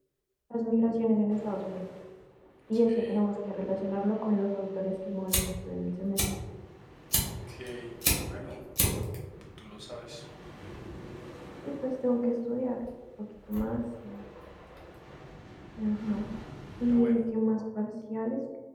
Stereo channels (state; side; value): identical; both; correlation 1.00